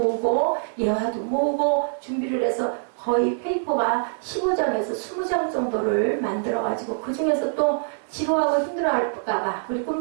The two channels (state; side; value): silent; left; digital silence